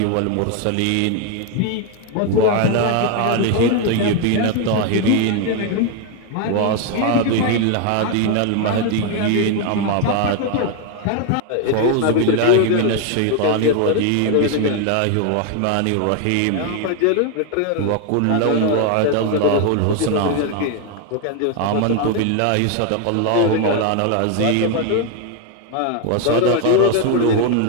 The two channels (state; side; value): different; both; correlation 0.01